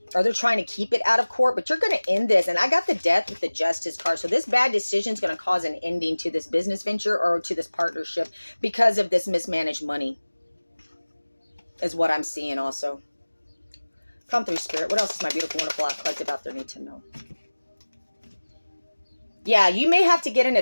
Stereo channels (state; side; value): inverted; both; correlation -1.00